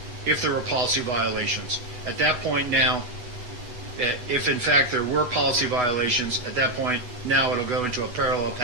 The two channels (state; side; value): late; left; 8.1 ms